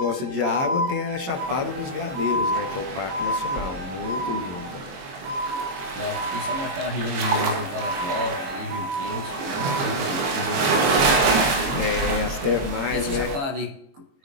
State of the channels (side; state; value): left; late; 22 ms